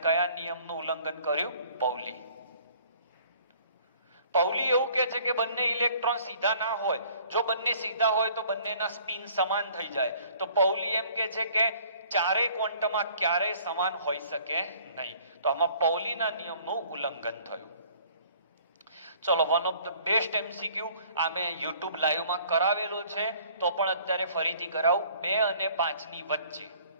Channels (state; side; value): inverted; both; correlation -0.55